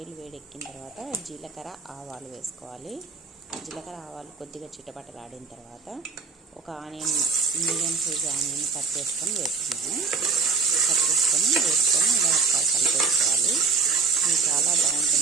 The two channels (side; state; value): left; quieter; 5.0 dB